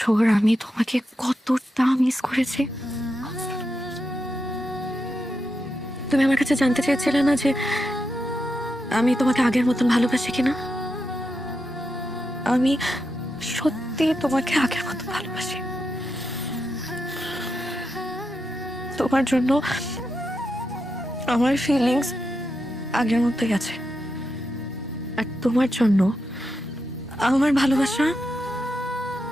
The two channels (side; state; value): both; normal; correlation 0.86